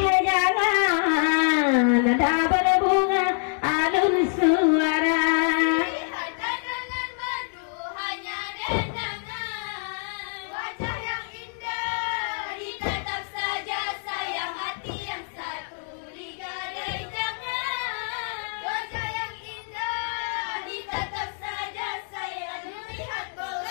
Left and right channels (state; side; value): silent; right; 61 dB below the other